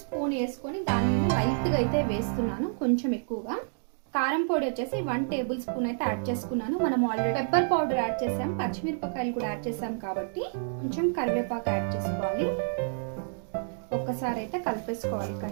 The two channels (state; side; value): silent; left; digital silence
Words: వేసుకొని దాని మీద లైట్గా అయితే వేస్తున్నాను, కొంచెం ఎక్కువగా. కారం పొడి వచ్చేసి 1 టేబుల్ స్పూన్ అయితే యాడ్ చేసుకున్నాను. మనం ఆల్రెడీ పెప్పర్ పౌడర్ యాడ్ చేసాం, పచ్చిమిరపకాయలు కూడా యాడ్ చేసాం కాబట్టి కొంచెం కరివేపాకు యాడ్ చేసుకోవాలి. ఒక్కసారి అయితే కలిపేసుకోవాలి